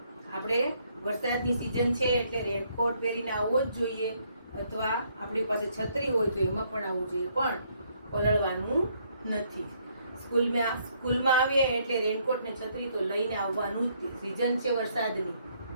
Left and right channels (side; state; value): both; inverted; correlation -0.69